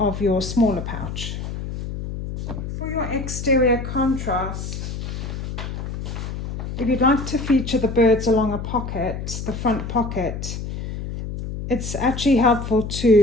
your smaller pouch. For your exterior contrast, if you'd like to feature the birds along a pocket, the front pocket, it's actually helpful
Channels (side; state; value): left; noise; hum, 6 dB below the sound